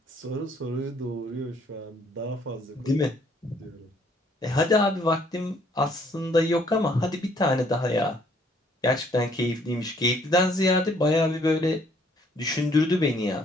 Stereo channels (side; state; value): both; normal; correlation 0.64